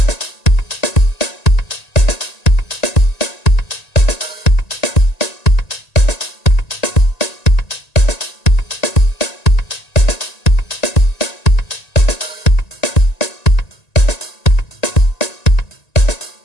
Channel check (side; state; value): right; late; 1.9 ms